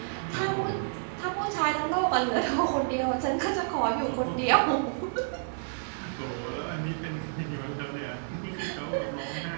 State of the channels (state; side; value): silent; left; digital silence